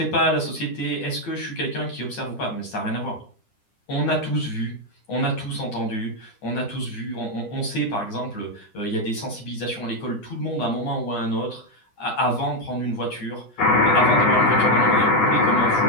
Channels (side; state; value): right; late; 10 ms